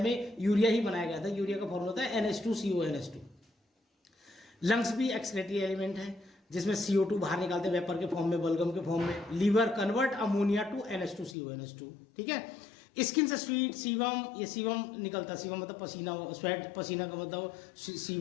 यूरिया ही बनाया गया था। यूरिया का फॉर्मूला होता है NH2CONH2। लंग्स भी एक्सक्रीटरी एलिमेंट है जिसमें CO2 बाहर निकालते हैं वेपर के फॉर्म में, बलगम के फॉर्म में। Liver convert ammonia to NH2CONH2, ठीक है। स्किन से स्वीट सीवम, ये सीवम निकलता है। सीवम मतलब पसीना, स्वेट पसीना का मतलब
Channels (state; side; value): drops out; right; at 11.4 s